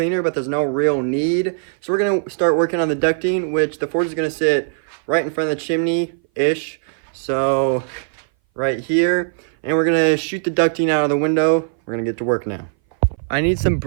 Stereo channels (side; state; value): left; silent; 60 dB below the other